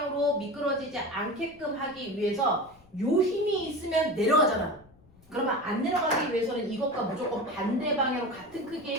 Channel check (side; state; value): left; noise; rumble, 28 dB below the sound